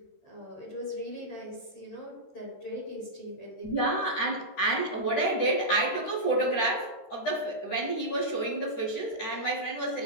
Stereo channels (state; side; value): late; right; 13 ms